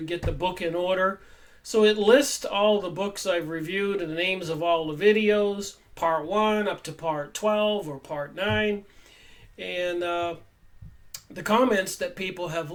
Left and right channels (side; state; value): both; identical; correlation 1.00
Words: get the book in order. So it lists all the books I've reviewed and the names of all the videos, part 1 up to part 12 or part 9, and the comments that people have